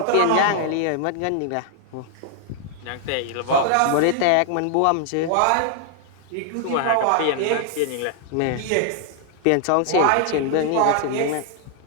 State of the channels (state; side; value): different; both; correlation 0.00